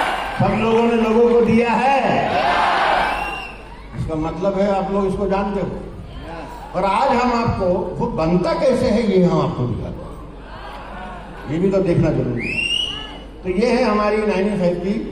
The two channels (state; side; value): identical; both; correlation 1.00